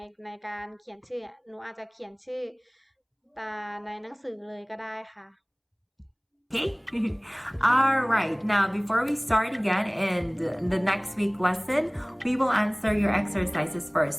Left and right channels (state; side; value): identical; both; correlation 1.00